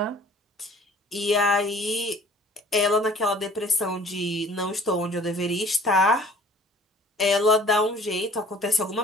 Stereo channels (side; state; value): both; normal; correlation 0.52